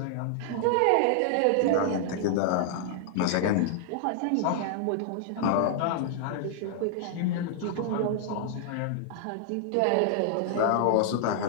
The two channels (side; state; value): both; different; correlation -0.01